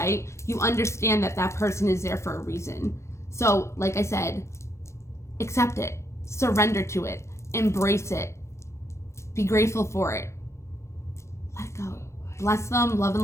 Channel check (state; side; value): late; right; 0.13 ms